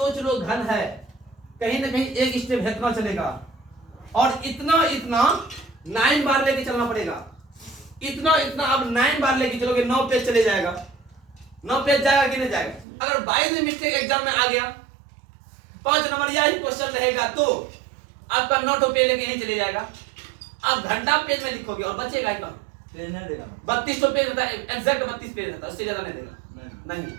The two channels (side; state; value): left; drops out; at 12.9 s